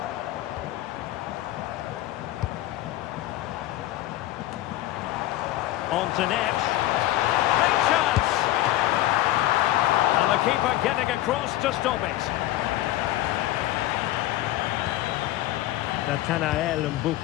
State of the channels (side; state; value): right; quieter; 15.3 dB